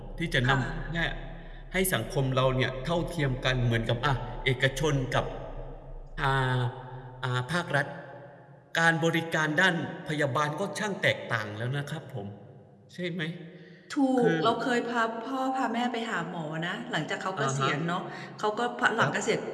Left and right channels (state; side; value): identical; both; correlation 1.00